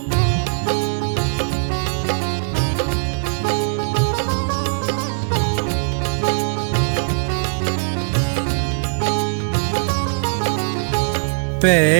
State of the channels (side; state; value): left; silent; digital silence